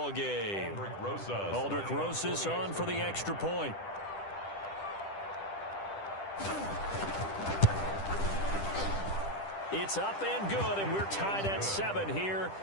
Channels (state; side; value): late; right; 10 ms